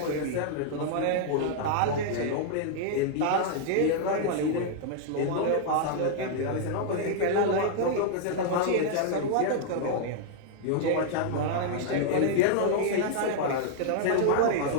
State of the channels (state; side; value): different; both; correlation -0.01